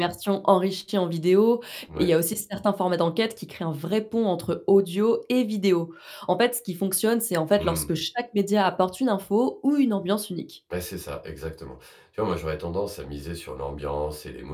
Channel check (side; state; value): both; identical; correlation 1.00